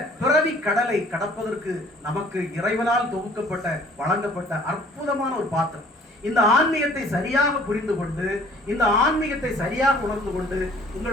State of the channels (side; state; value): both; normal; correlation 0.54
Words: பிறவி கடலை கடப்பதற்கு நமக்கு இறைவனால் தொகுக்கப்பட்ட வழங்கப்பட்ட அற்புதமான ஒரு பாத்திரம். இந்த ஆன்மீகத்தை சரியாக புரிந்து கொண்டு, இந்த ஆன்மீகத்தை சரியாக உணர்ந்து கொண்டு,